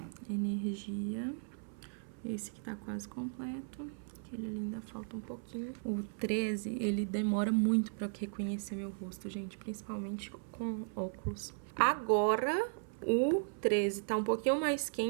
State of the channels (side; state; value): left; silent; 53 dB below the other